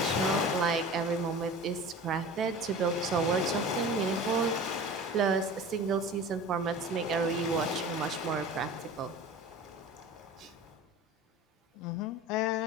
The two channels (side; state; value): both; normal; correlation 0.37